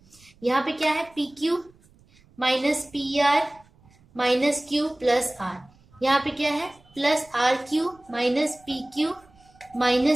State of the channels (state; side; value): noise; right; rumble, 30 dB below the sound